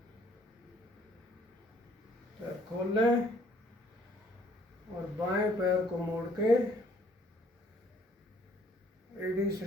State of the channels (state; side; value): normal; both; correlation 0.62